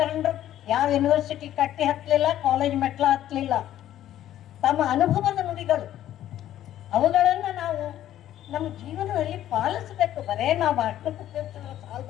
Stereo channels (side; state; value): right; quieter; 12.3 dB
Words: ಯಾವ ಯೂನಿವರ್ಸಿಟಿ ಕಟ್ಟಿ ಹತ್ತಲಿಲ್ಲ, ಕಾಲೇಜ್ ಮೆಟ್ಲ ಹತ್ತಲಿಲ್ಲ. ತಮ್ಮ ಅನುಭವದ ನುಡಿಗಳು, ಅವುಗಳನ್ನ ನಾವು ನಮ್ಮ ಜೀವನದಲ್ಲಿ ಪಾಲಿಸಬೇಕು. ಬರೇ ನಾವು ಅಷ್ಟಕ್ಕೆ